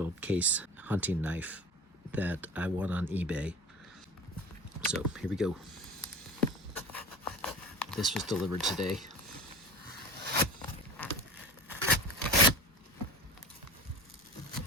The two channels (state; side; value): normal; both; correlation 0.36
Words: case hunting knife that I won on eBay. So here we go. This was delivered today.